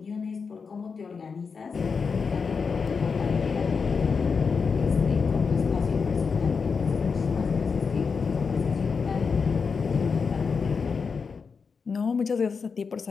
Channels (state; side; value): quieter; right; 5.4 dB